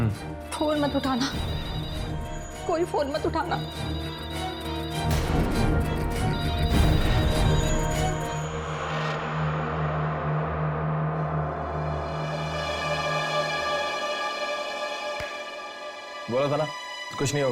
फोन मत उठाना, कोई फोन मत उठाना। बोला था ना कुछ नहीं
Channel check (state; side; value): identical; both; correlation 1.00